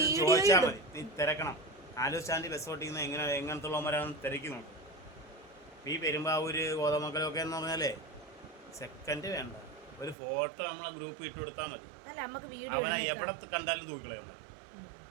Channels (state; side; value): drops out; left; at 10.2 s